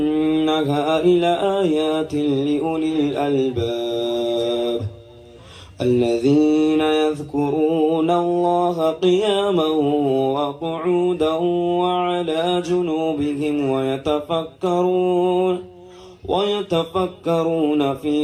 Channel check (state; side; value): identical; both; correlation 1.00